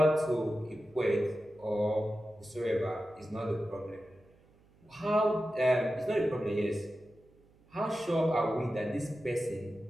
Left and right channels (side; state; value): right; noise; hum, 30 dB below the sound